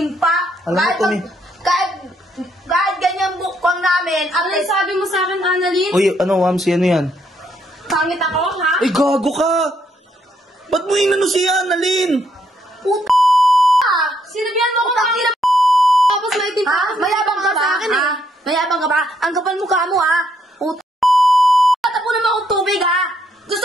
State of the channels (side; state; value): both; normal; correlation 0.73